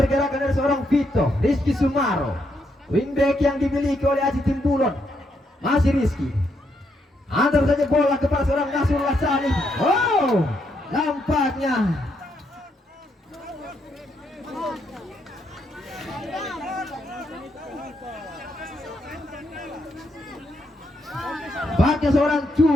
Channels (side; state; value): both; normal; correlation 0.78